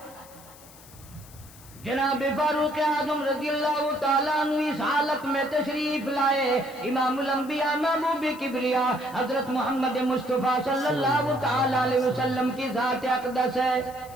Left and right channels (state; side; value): noise; left; hiss, 21 dB below the sound